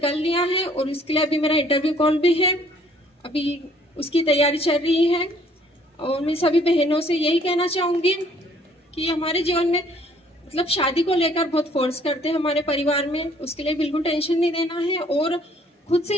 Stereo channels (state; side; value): normal; both; correlation 0.61